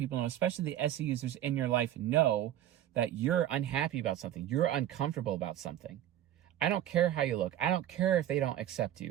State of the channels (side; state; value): left; quieter; 11.9 dB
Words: know, especially the SE users in your life, know that you're unhappy about something. You're uncomfortable about something. I don't care how you look. I don't care if they don't accept